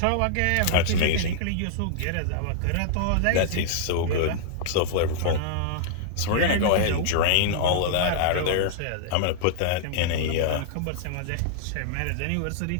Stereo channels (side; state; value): both; different; correlation -0.01